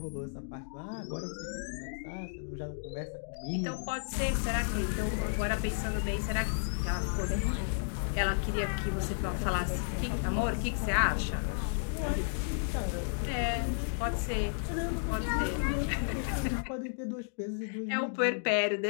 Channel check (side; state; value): right; silent; digital silence